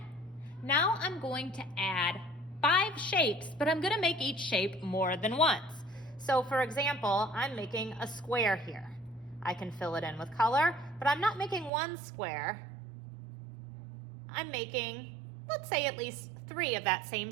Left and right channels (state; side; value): drops out; left; at 11.7 s